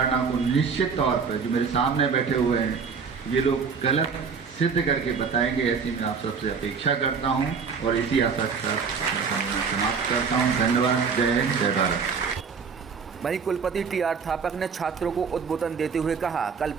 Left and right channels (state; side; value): quieter; left; 5.8 dB